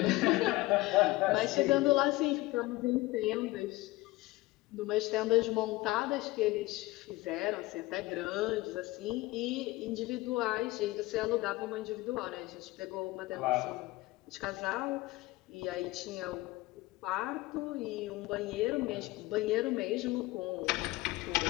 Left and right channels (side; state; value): right; quieter; 20.0 dB